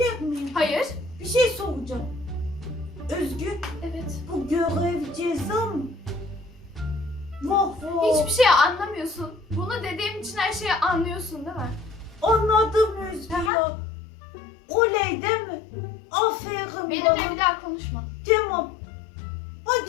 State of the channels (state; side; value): drops out; right; at 13.5 s